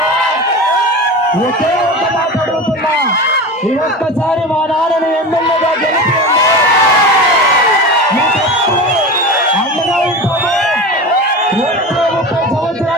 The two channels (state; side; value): normal; both; correlation 0.29